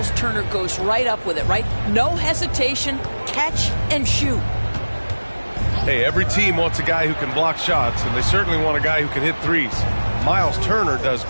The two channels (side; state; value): both; inverted; correlation -1.00